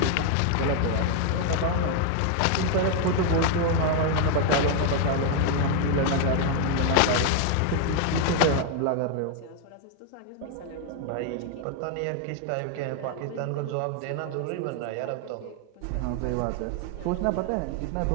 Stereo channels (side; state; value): both; different; correlation 0.00